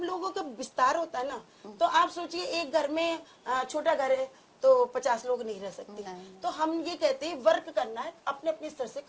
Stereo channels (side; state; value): both; identical; correlation 1.00